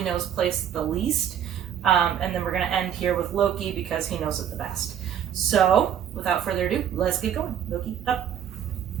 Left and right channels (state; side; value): quieter; left; 9.4 dB